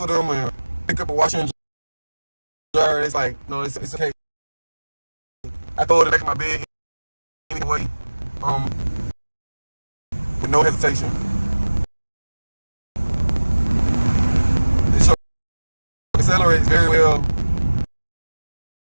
them and pick up a washer and dryer, it's like, no, it's okay. I throw it in the back of my bed anyway, with no hesitation. This truck accelerates very well,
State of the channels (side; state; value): both; inverted; correlation -1.00